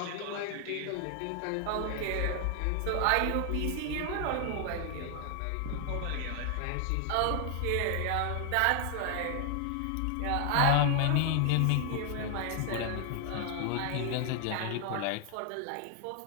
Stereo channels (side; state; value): both; different; correlation 0.00